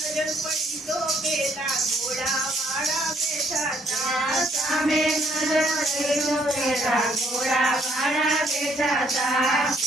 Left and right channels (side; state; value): both; normal; correlation 0.68